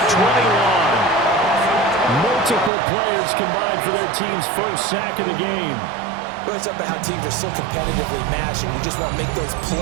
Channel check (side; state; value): left; drops out; at 2.7 s